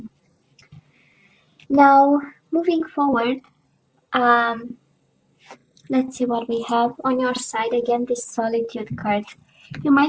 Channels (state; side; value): identical; both; correlation 1.00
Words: Now, moving forward, let's see what we have on your side. Again, this Solitude card. You